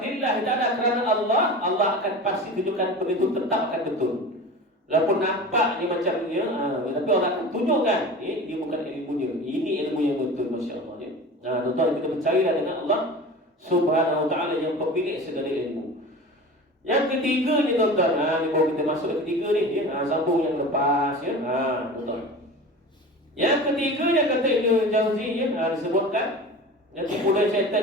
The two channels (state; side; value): normal; both; correlation 0.34